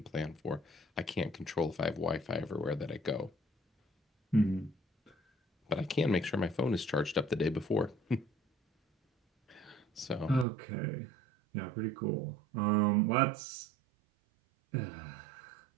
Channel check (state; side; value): drops out; left; at 10.5 s